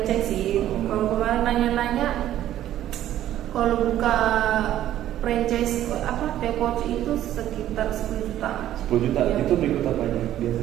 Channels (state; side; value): quieter; left; 12.4 dB